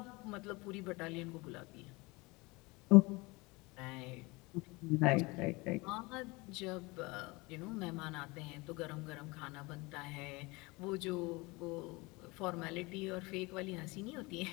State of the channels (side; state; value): right; quieter; 24.6 dB